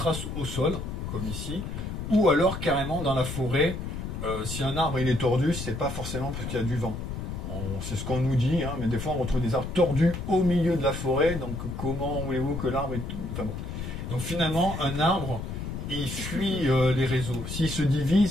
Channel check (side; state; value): left; noise; rumble, 6 dB below the sound